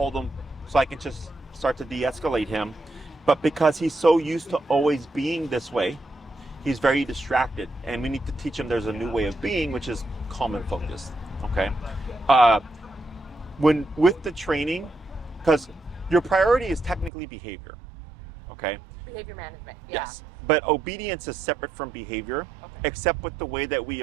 him so I can just start to de-escalate him. But because he's so used to always being this way, he's very distracted, and we need to teach him there's a new way of being, which is calm and focused. Okay, when with the training, because your priority is technically behavior. Okay. Behavior management. Yeah. Yes, but obedience is separate from behavior, except with the way that we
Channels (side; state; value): left; drops out; at 17.1 s